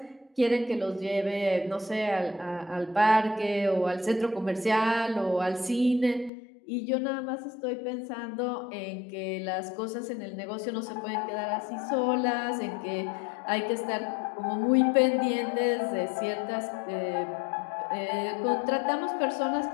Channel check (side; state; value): right; drops out; at 6.3 s